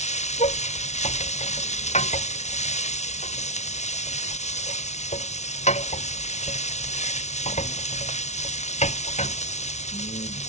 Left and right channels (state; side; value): late; right; 0.32 ms